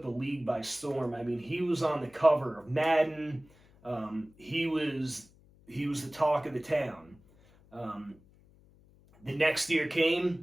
the league by storm. I mean, he was on the cover of Madden. He was the talk of the town. The next year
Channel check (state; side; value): noise; left; hum, 28 dB below the sound